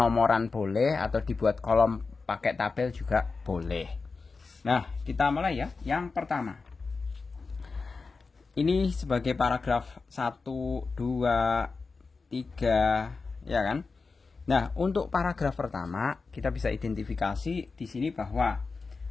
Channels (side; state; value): right; quieter; 4.3 dB